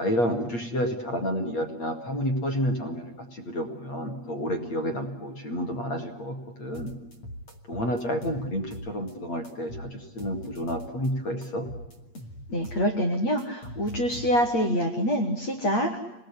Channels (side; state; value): right; late; 8.5 ms